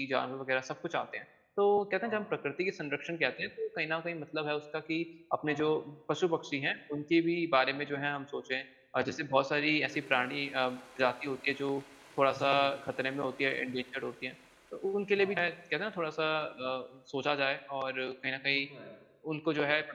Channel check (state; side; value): identical; both; correlation 1.00